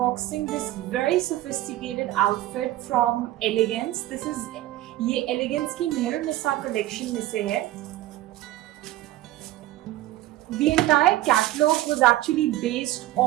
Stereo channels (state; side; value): quieter; left; 15.3 dB